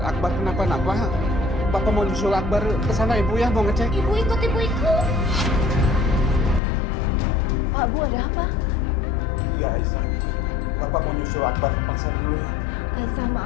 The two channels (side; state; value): right; drops out; at 6.6 s